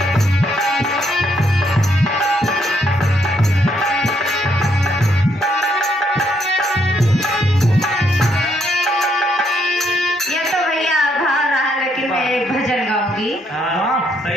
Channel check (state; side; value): normal; both; correlation 0.73